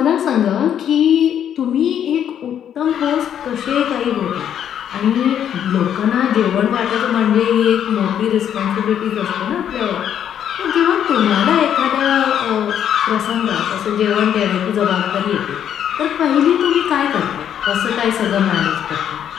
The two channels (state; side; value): quieter; right; 9.5 dB